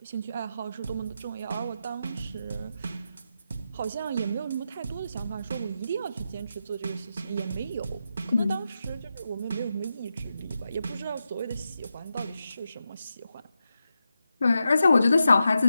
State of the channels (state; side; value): inverted; both; correlation -0.88